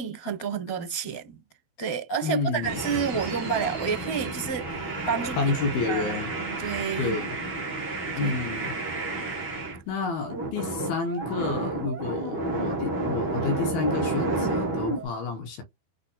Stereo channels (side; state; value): right; late; 12 ms